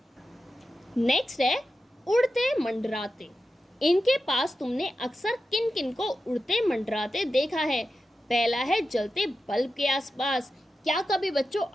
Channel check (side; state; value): both; normal; correlation 0.91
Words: नेक्स्ट है, उड़ते मंडराते। इनके पास तुमने अक्सर किन किन को उड़ते मंडराते देखा है। पहला है, जलते बल्ब के आसपास। क्या कभी बच्चों